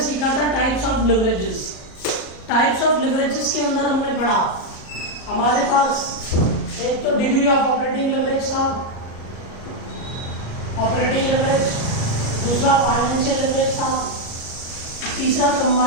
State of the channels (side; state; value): right; late; 38 ms